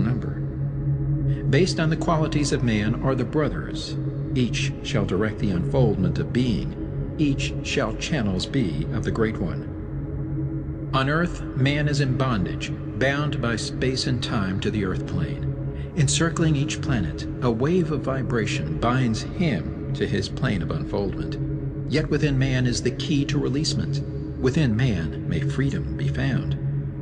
Based on the qualities of man are the brothers. Each shall direct the unfoldment of being. Each shall channels be of the Great One. On earth, man is in bondage, bound by space and time to the earth plane. Encircling each planet, a wave of vibration binds him to his plane of unfoldment. Yet within man is the key to releasement. Within man may freedom be found.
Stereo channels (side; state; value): both; identical; correlation 1.00